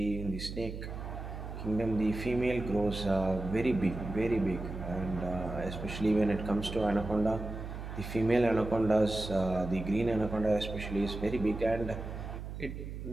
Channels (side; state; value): right; noise; hum, 8 dB below the sound